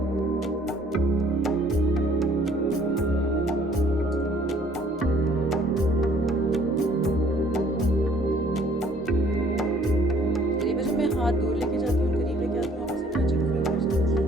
हाथ दूर लेके जाती हूँ, करीब लेके आती हूँ, आप इसे टचिंग फील कर सकती हैं।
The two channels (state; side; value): normal; both; correlation 0.59